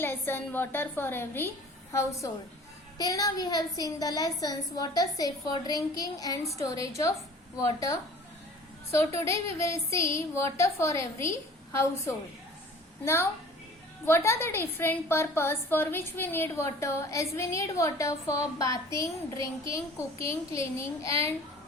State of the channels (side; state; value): both; normal; correlation 0.46